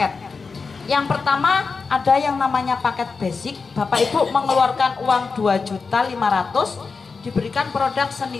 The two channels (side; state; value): right; quieter; 4.7 dB